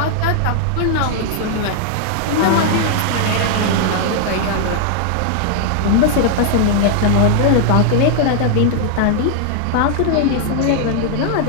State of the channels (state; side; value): different; both; correlation 0.00